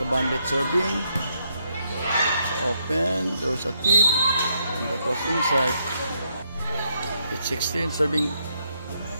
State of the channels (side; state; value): both; inverted; correlation -0.75